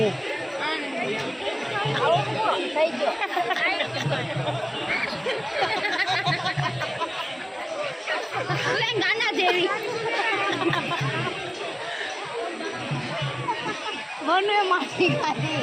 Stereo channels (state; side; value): identical; both; correlation 1.00